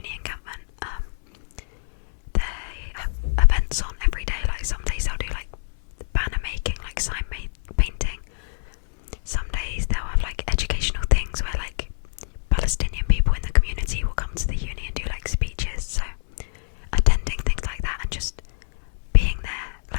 encampment, they have events on every day. Like, some days they'll do like banner making, like sign painting. Some days they'll have like educational things where like Palestinian people in the community will come to the uni and do like speeches. So attending things like that and just being there,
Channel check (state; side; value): silent; right; 62 dB below the other